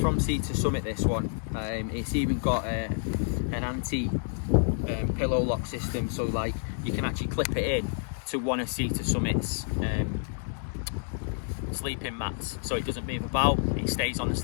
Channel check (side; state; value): right; silent; digital silence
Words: Sea to Summit, this one. It's even got an anti pillow lock system, so like you can actually clip it in to one of Sea to Summit's sleeping mats, so it doesn't move about. It stays on the